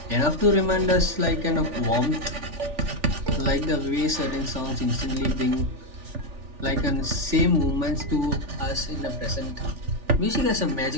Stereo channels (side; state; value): left; late; 3.4 ms